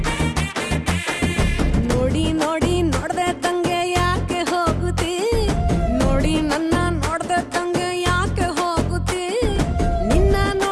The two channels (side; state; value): both; identical; correlation 1.00